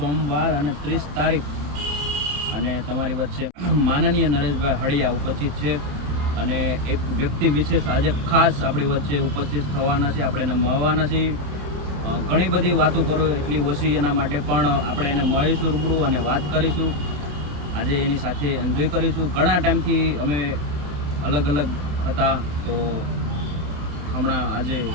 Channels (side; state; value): left; late; 27 ms